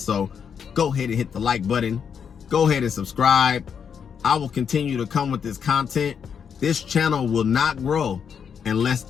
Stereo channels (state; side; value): quieter; right; 7.2 dB